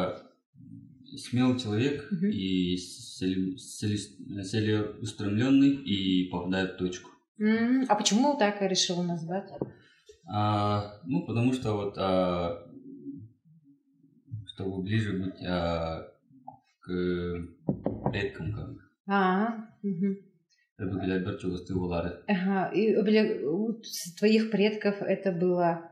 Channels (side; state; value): both; identical; correlation 1.00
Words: смелый человек и целеустремленный и попадает в точку. А почему так решил назвать? Потому что вот чтобы ближе быть к предкам, как бы. Ага. И у твоих предков это было